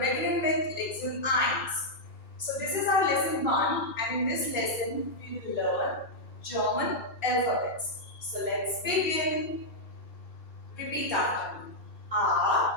with lesson 1. So this is our lesson 1, and in this lesson we will learn German alphabets. So let's begin. Repeat after me.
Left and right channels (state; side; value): late; right; 2.3 ms